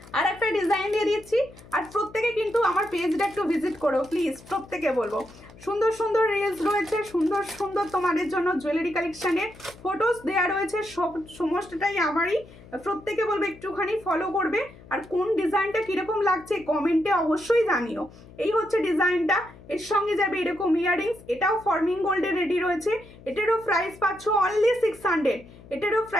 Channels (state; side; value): noise; left; hum, 21 dB below the sound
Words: আর একটা ডিজাইন দিয়ে দিচ্ছি, আর প্রত্যেকে কিন্তু আমার পেজটা একটু ভিজিট করো প্লিজ, প্রত্যেকে বলবো। সুন্দর সুন্দর রিলস রয়েছে, সুন্দর সুন্দর তোমাদের জন্য জুয়েলারি কালেকশানের ফটোস দেওয়া রয়েছে, সমস্তটাই আমারই। প্রত্যেকে বলবে একটুখানি ফলো করবে, আর কোন ডিজাইনটা কীরকম লাগছে কমেন্টে অবশ্যই জানিও। এই হচ্ছে ডিজাইনটা, এর সঙ্গে যাবে এরকম ইয়াররিংস, এটাও ফর্মিং গোল্ডে রেডি রয়েছে। এটারও প্রাইস পাচ্ছ অনলি 600, এটারও